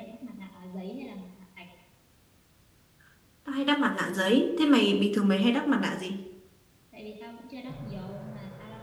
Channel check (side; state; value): both; identical; correlation 1.00